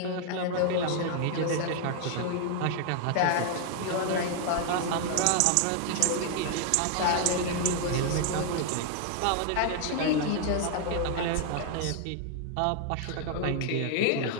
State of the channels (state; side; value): different; both; correlation 0.00